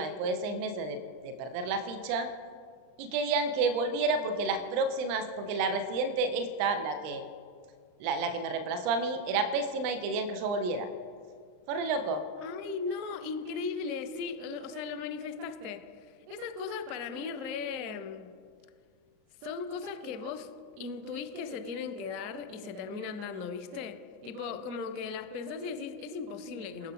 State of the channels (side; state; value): left; late; 39 ms